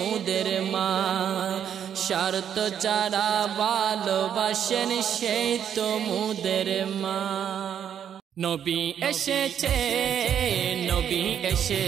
মা স্বার্থ ছাড়া ভালোবাসেন সেই তো মুদের মা নবী এসেছে নবী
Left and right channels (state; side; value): quieter; left; 9.0 dB